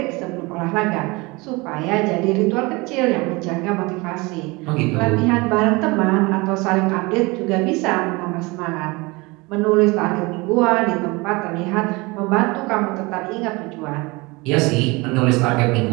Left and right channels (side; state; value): left; quieter; 24.8 dB